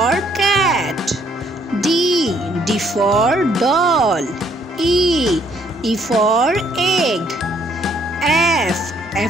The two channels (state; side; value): normal; both; correlation 0.67